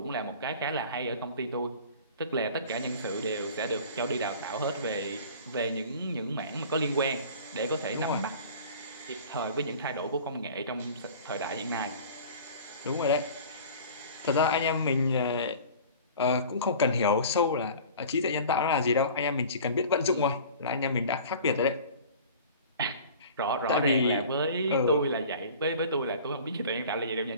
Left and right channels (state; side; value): inverted; both; correlation -0.42